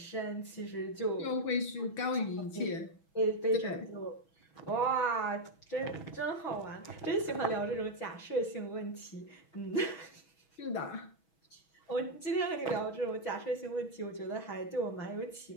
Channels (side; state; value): right; late; 6.2 ms